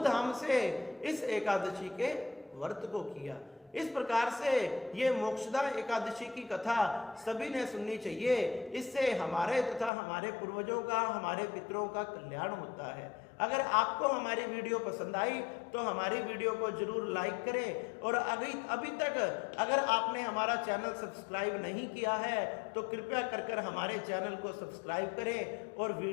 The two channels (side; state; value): right; drops out; at 9.9 s